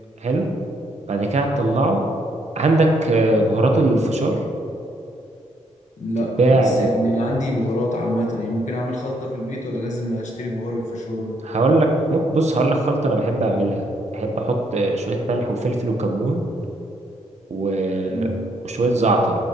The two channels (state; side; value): normal; both; correlation 0.72